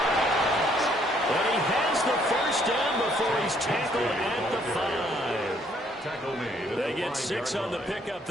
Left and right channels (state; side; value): normal; both; correlation 0.66